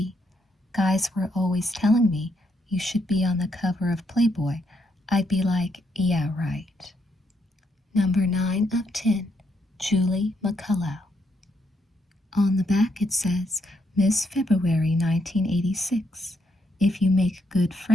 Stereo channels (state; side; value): normal; both; correlation 0.76